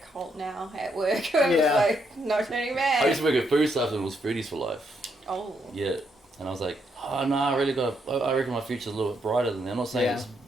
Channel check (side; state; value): both; normal; correlation 0.77